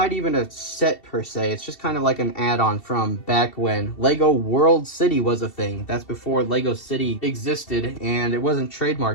even a set per se. It's just kind of like an add-on from back when Lego World City was a thing. That's before Lego City existed, and it wasn't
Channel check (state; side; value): late; right; 2.7 ms